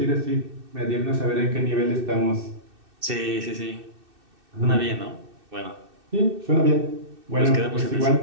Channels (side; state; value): left; late; 2.6 ms